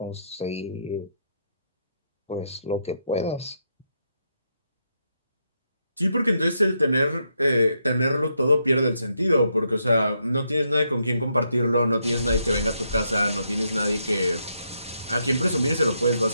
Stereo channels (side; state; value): both; inverted; correlation -0.79